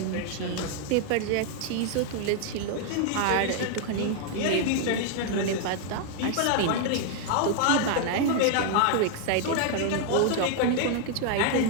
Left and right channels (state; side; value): different; both; correlation 0.00